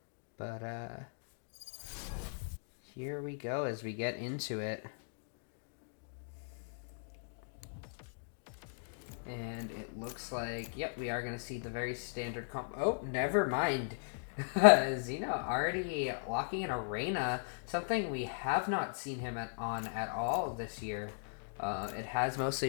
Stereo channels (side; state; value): right; silent; digital silence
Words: But here we go as we get into it. And it looks like, yep, we are going to see the very standard comp. Oh, never mind. Zeno already locking in Arena, something we have not seen him on at all this year. It has